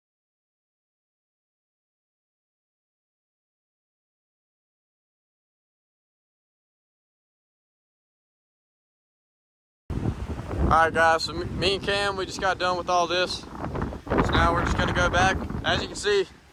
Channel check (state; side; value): identical; both; correlation 1.00